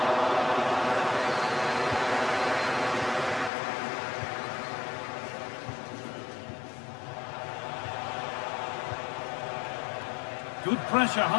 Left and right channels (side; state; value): right; drops out; at 3.5 s